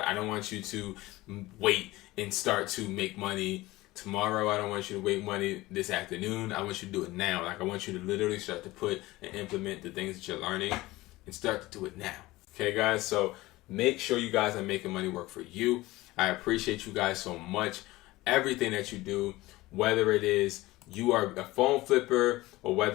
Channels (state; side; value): quieter; right; 19.1 dB